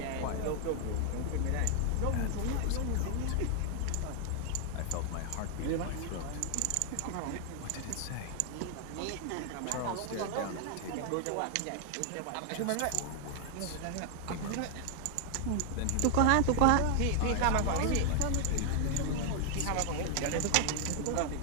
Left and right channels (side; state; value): both; different; correlation 0.00